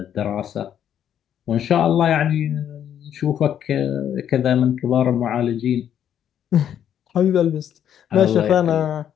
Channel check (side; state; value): right; quieter; 9.7 dB